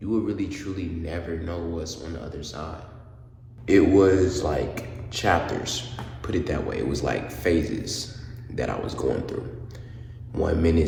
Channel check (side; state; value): both; identical; correlation 1.00